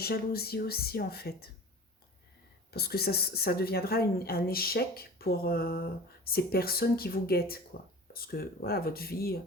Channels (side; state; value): both; normal; correlation 0.39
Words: aussi, en fait. Parce que ça deviendra un échec pour ces personnes qui vous guettent, quoi. Parce que, voilà, votre vie,